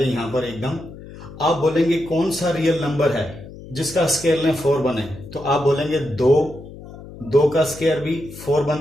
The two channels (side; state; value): left; noise; hum, 16 dB below the sound